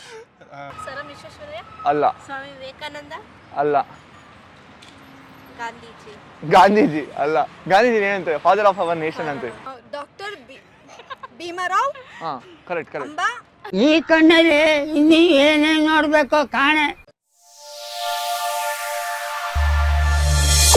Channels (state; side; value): identical; both; correlation 1.00